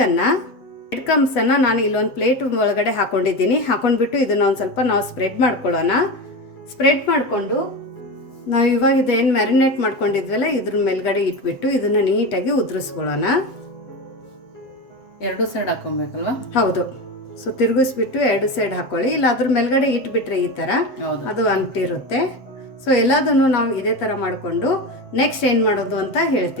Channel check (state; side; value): late; right; 7.7 ms